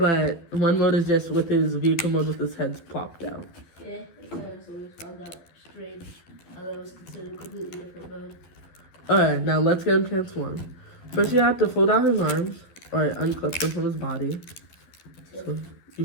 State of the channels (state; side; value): late; right; 12 ms